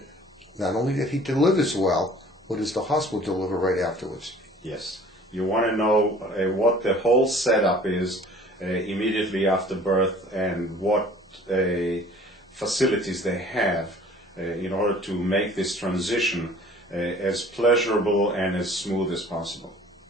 not only that he delivers well, what does the hospital deliver right afterwards? Yes. You want to know what the whole setup is immediately after birth, and what facilities they have in order to make this transition as pleasurable and as smooth as possible.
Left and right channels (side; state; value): both; normal; correlation 0.50